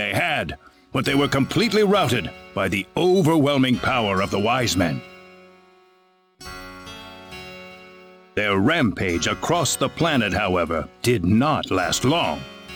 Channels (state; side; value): identical; both; correlation 1.00